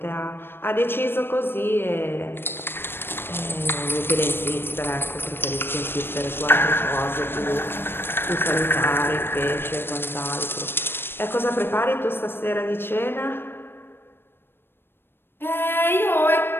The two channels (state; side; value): late; right; 0.10 ms